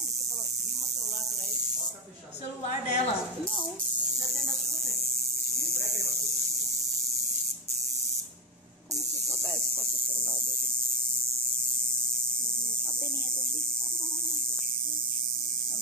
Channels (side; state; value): both; normal; correlation 0.14